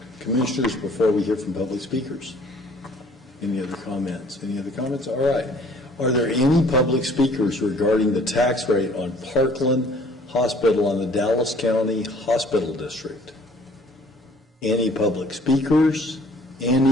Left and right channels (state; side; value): normal; both; correlation 0.55